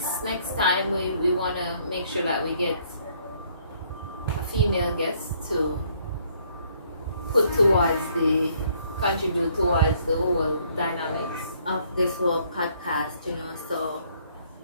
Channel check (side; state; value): both; inverted; correlation -0.65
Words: time we want to make sure that we get a female guest to contribute towards the whole dynamics of this whole podcast, you know. So